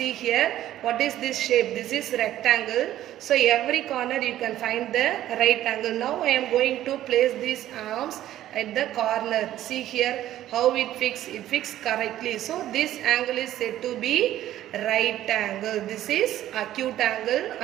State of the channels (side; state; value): left; quieter; 13.1 dB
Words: here, what is this shape? This is rectangle. So every corner you can find the right angle. Now I am going to place these arms at the corner. See here how it fixed correctly. So this angle is said to be right angle. This is acute angle